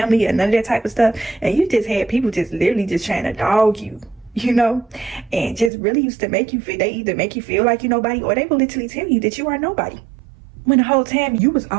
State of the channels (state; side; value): drops out; left; at 5.7 s